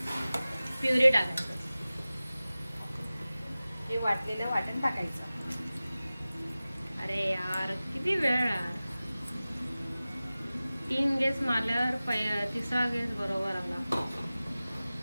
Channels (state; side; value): inverted; both; correlation -0.97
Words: प्युरी टाकायचं. हे वाटलेलं वाटण टाकायचं. अरे यार, किती वेळ यार. 3 गेस मारल्यावर तिसरा गेस बरोबर आला.